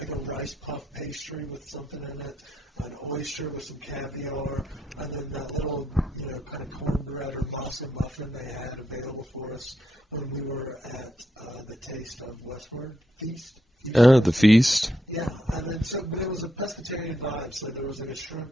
a rice puff pastry with something in it, an oyster with some caviar, and then that little, you know, kind of cornbread or masa muffin they had available for us when we were at the Taste of Westward Feast. Of The Westward. feast. Yeah, and then but it was a pescatarian vibe. So there was like a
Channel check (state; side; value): normal; both; correlation 0.80